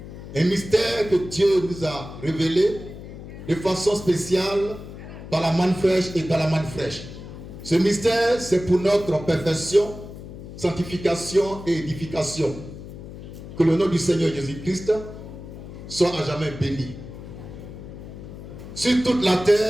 un mystère que Dieu nous a révélé de façon spéciale par la manne fraîche et par la manne fraîche. Ce mystère, c'est pour notre perfection, sanctification et édification. Que le nom du Seigneur Jésus-Christ soit à jamais béni. Sur toute la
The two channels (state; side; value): noise; left; hum, 13 dB below the sound